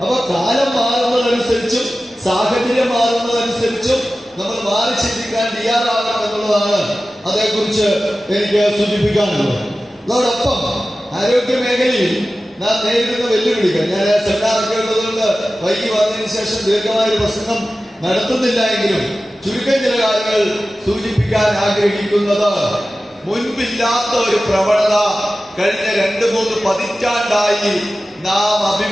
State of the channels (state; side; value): normal; both; correlation 0.95